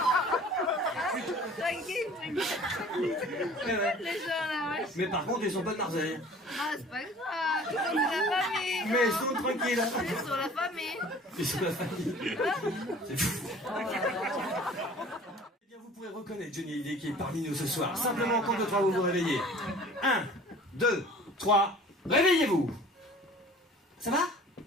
Tranquille. Ouais. Les gens là, ouais. Mais par contre, ils sont pas de Marseille. Ah, c'est pas grave. Ils sont de la famille. Mais ils sont tranquilles. Ils sont la famille. Ils sont la famille. C'est fou. Eh bien, vous pourrez reconnaître Johnny Hallyday qui est parmi nous ce soir. Simplement, en compte de 3, vous vous réveillez. 1, 2, 3, réveillez-vous. Ça va? Ouais.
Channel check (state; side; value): normal; both; correlation 0.47